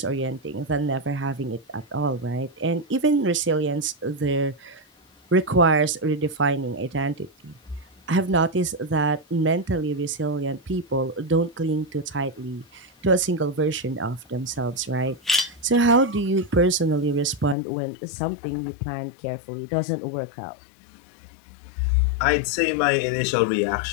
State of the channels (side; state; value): right; drops out; at 17.6 s